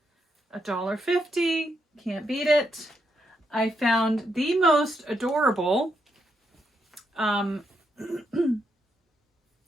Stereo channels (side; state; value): both; normal; correlation 0.80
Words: $1.50. Can't beat it. I found the most adorable